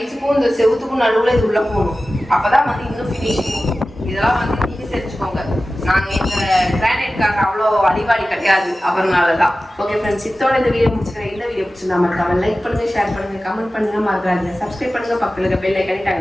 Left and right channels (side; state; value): both; normal; correlation 0.95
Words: இந்த செவுத்துக்கும் நடுவில் இது உள்ள போகணும். அப்பதான் வந்து இன்னும் ஃபினிஷிங். இதெல்லாம் வந்து நீங்க தெரிஞ்சுக்கோங்க. நாங்க இந்த கிரானைட்காக அவ்வளோ அடிவாடி கிடையாது, அவர்னாலதான். ஓகே ஃப்ரெண்ட்ஸ், இதோட இந்த வீடியோ முடிச்சுக்கிறேன். இந்த வீடியோ பிடிச்சிருந்தா மறக்காம லைக் பண்ணுங்க, ஷேர் பண்ணுங்க, கமெண்ட் பண்ணுங்க, மறக்காதீங்க சப்ஸ்கிரைப் பண்ணுங்க, பக்கத்துல பெல் ஐகானை